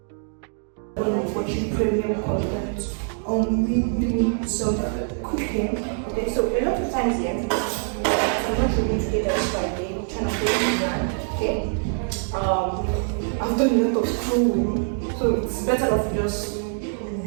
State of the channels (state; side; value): silent; left; 57 dB below the other